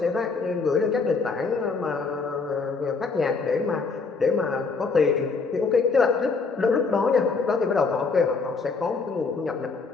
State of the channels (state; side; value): quieter; right; 4.5 dB